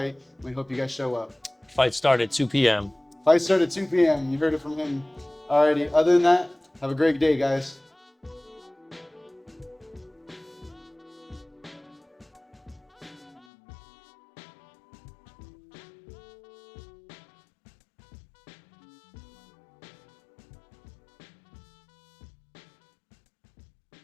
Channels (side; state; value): right; drops out; at 13.5 s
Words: We hope you guys show up. Fight start at 2 p.m. Fight start at 2 p.m. You heard it from him. Alrighty, other than that, have a great day, guys.